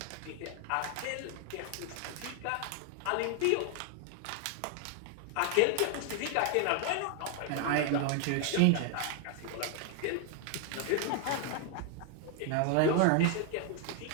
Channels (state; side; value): different; both; correlation 0.00